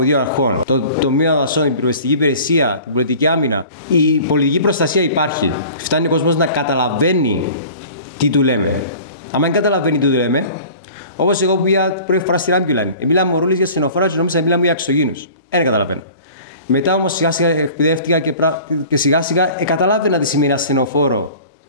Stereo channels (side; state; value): both; inverted; correlation -0.44